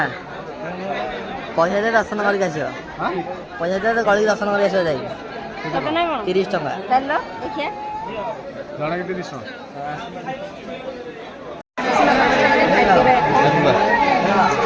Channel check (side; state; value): both; identical; correlation 1.00